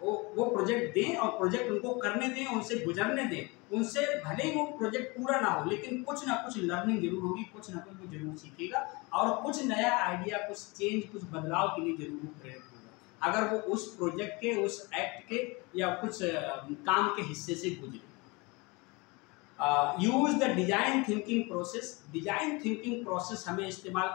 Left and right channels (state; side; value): quieter; right; 26.4 dB